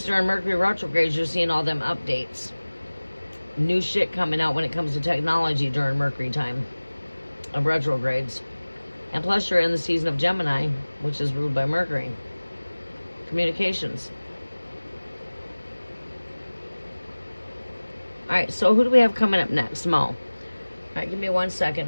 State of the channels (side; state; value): both; inverted; correlation -1.00